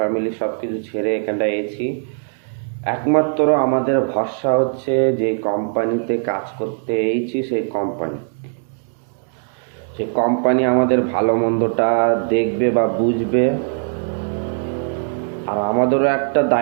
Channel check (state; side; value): silent; left; 66 dB below the other